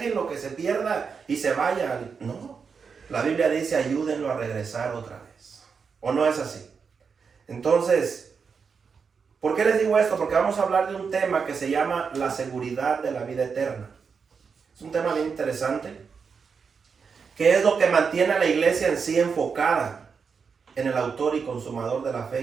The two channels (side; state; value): left; quieter; 5.8 dB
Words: que se pierda y se vaya. No, la Biblia dice ayúdenlo a regresar otra vez. ¿O no es así? Entonces, ¿por qué les digo esto? Porque vamos a hablar de un tema que se llama la seguridad de la vida eterna. Es un tema bien interesante. ¿Qué es lo que mantiene a la iglesia en sí enfocada en el autor y consumador de la